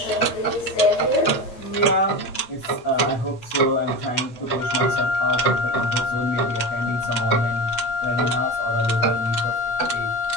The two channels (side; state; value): right; late; 8.2 ms